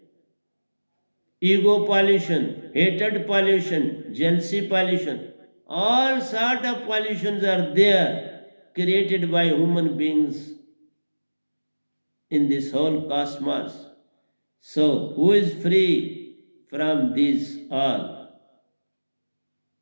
ego pollution, hatred pollution, jealousy pollution. All sort of pollutions are there, created by human beings in this whole cosmos. So who is free from these all?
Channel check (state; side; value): inverted; both; correlation -1.00